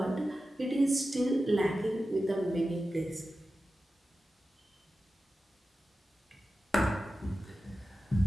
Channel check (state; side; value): normal; both; correlation 0.93